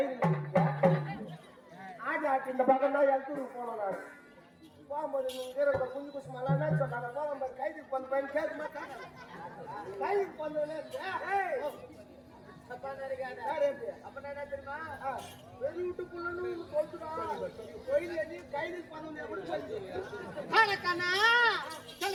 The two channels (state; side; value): identical; both; correlation 1.00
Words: ஆடி ஆட்டி இந்த பக்கம் தான் எழுத்தூருக்கு போனோம். நான் போகும்போது நீங்க குஞ்சு குசு மலான்னு சொன்னாங்க. போகும்போது கைதுக்கு போன பையன் கேட்க மாட்டாங்க. கைதுக்கு போனோடனே அப்ப என்ன தெரியுமா? வெளியூட்டுக்குள்ளன்னு சொல்லுறான். கோயில் எண்ணி கைதுக்கு போனோம் எப்படி சொல்லி